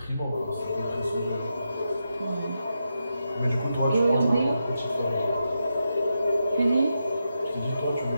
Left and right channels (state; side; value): inverted; both; correlation -0.86